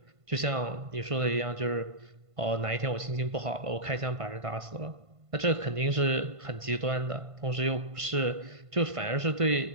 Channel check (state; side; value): late; left; 1.5 ms